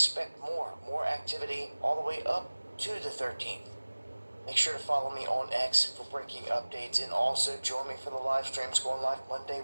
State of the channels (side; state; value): both; inverted; correlation -1.00